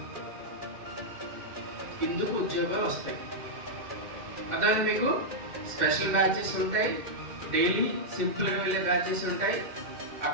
ఇందుకు ఉద్యోగాలు వస్తాయి. అదే మీకు స్పెషల్ బ్యాచెస్ ఉంటాయి, డైలీ సింపుల్ వెళ్ళే బ్యాచెస్ ఉంటాయి,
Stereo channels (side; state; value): left; late; 2.2 ms